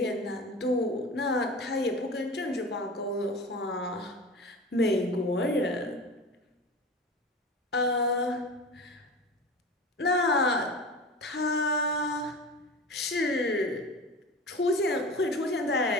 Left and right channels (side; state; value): both; normal; correlation 0.32